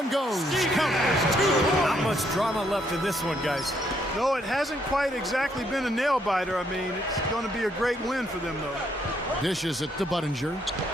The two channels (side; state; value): both; normal; correlation 0.72